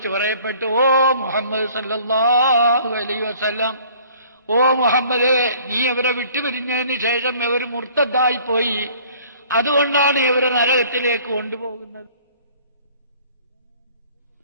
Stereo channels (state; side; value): inverted; both; correlation -0.53